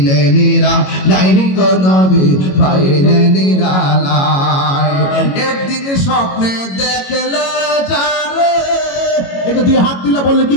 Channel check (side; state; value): right; late; 22 ms